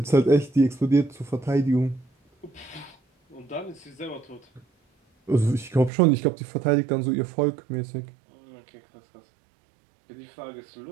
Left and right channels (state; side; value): drops out; left; at 5.9 s